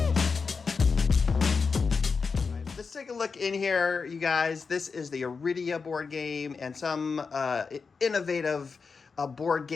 Let's take a look in here, you guys. This is the Arydia board game and some innovative board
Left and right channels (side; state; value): right; quieter; 5.0 dB